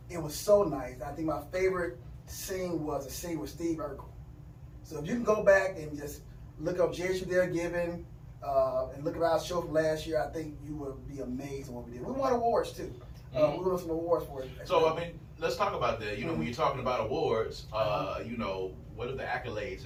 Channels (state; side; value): identical; both; correlation 1.00